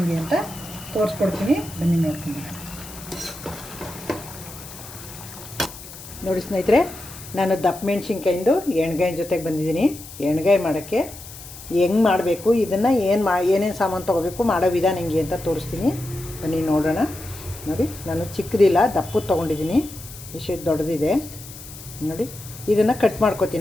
ಅಂತ ತೋರಿಸ್ಕೊಡ್ತೀನಿ. ಬನ್ನಿ ನೋಡ್ಕೊಂಡು ನೋಡಿ ಸ್ನೇಹಿತರೆ, ನಾನು ದಪ್ಪ ಮೆಣಸಿನ್ಕಾಯಿಂದು ಎಣ್ಗಾಯಿ ಜೊತೆಗೆ ಬಂದಿದ್ದೀನಿ. ಎಣ್ಗಾಯಿ ಮಾಡೋಕ್ಕೆ ಹೆಂಗೆ ಮಾಡಬೇಕು, ಇದನ್ನು ಏನೇನು ಸಾಮಾನು ತೊಗೋಬೇಕು, ಮಾಡೋ ವಿಧಾನ ಹೆಂಗೆ ಅಂತ ತೋರಿಸ್ತೀನಿ. ಬನ್ನಿ ನೋಡೋಣ. ನೋಡಿ, ನಾನು ಚಿಕ್ಕದಿಲ್ಲ, ದಪ್ಪದು ತೊಗೊಂಡಿದ್ದೀನಿ. ಇಷ್ಟು ದೊಡ್ಡದಿದೆ ನೋಡಿ. ಇದನ್ನು ಕಟ್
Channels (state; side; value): noise; left; hiss, 15 dB below the sound